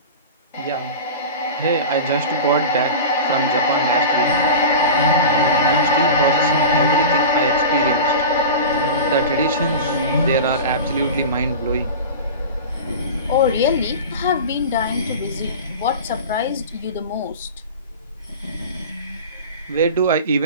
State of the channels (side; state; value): both; inverted; correlation -0.31